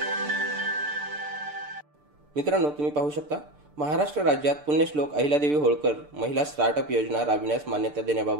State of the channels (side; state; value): left; late; 6.8 ms